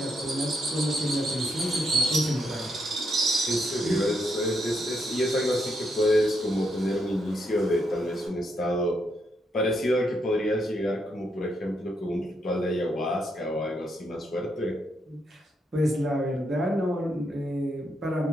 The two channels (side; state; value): both; normal; correlation 0.78